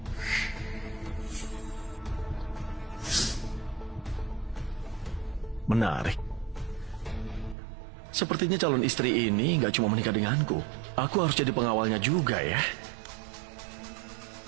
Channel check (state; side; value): drops out; left; at 7.6 s